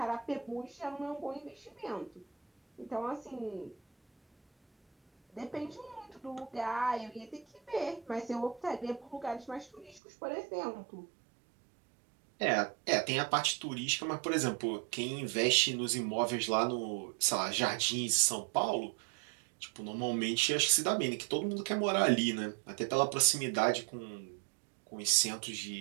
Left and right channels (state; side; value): drops out; left; at 10.0 s